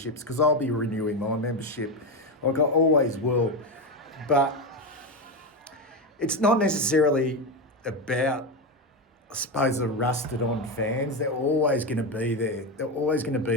because I'll be renewing my membership, like I always will. But it's not necessarily about, I suppose, the rusted on fans. They're always going to be there. They're always going to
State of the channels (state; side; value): normal; both; correlation 0.13